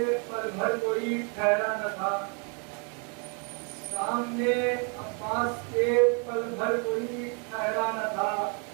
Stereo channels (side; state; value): left; quieter; 37.2 dB